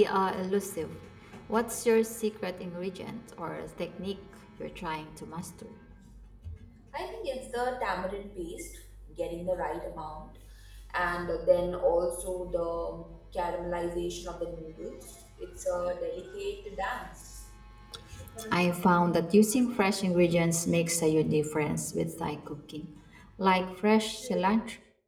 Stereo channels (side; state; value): both; identical; correlation 1.00